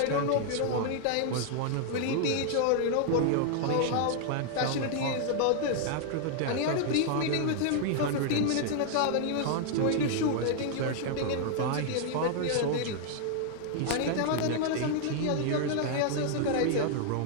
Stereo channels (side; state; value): both; different; correlation 0.00